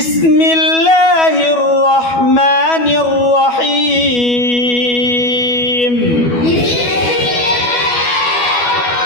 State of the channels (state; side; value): late; right; 12 ms